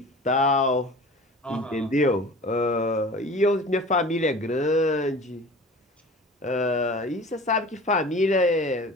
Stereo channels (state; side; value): normal; both; correlation 0.40